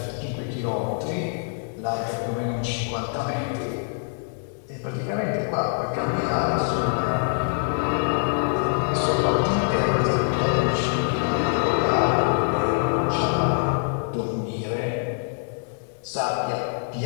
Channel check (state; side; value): silent; right; digital silence